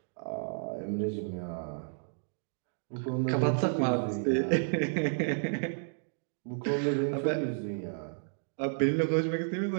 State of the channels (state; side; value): silent; left; digital silence